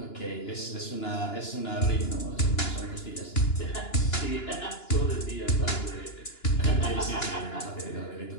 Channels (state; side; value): late; right; 2.9 ms